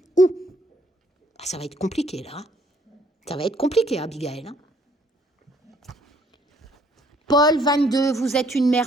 Ça va être compliqué, là. Ça va être compliqué, Abigail. Paul 22, vous êtes une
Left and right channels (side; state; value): both; normal; correlation 0.64